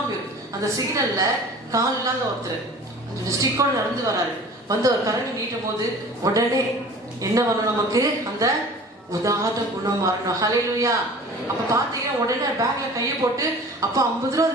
அந்த சிக்னல்ல கால் இல்லாத ஒருத்தர் ஸ்டிக்கோட நடந்து வராரு. வந்து ஒரு கரண்டி நீட்டும் போது உடனே என்ன வரும்? நமக்கு அந்த உதாரண குணம் வரணும். ஹல்லேலூயா. அப்ப பாத்தீங்கன்னா உடனே பேக்ல கையை போட்டு, அப்ப 50 ரூபாய்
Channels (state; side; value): normal; both; correlation 0.43